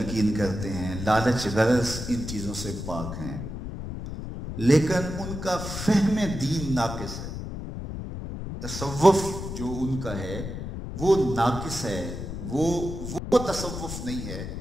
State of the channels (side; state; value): left; noise; rumble, 7 dB below the sound